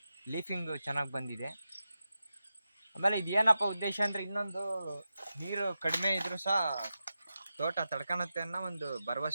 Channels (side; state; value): both; inverted; correlation -0.91